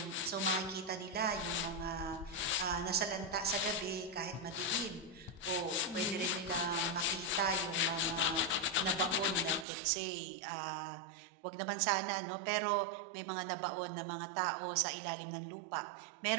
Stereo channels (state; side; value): drops out; left; at 9.7 s